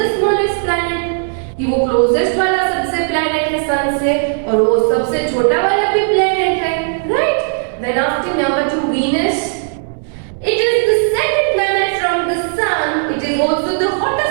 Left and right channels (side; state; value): left; silent; 62 dB below the other